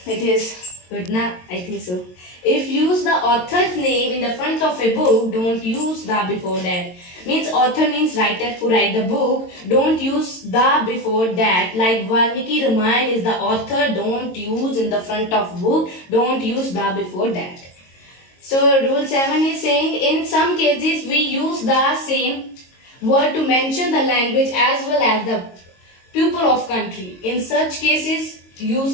it is good na? I think so. If use the author's name in the front of a book, don't use the before that. Means author means writer who write the book. Don't use the before that. Like Valmiki Ramayana is the author. Don't use in the front of book. Don't use the before that. So rule 7 is saying in some cases we use the same word to mention the language as well as the pupil of country. In such cases,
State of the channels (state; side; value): late; right; 22 ms